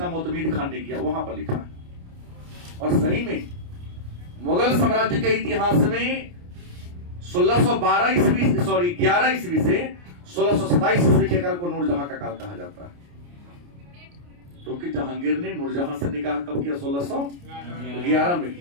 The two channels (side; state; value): left; late; 29 ms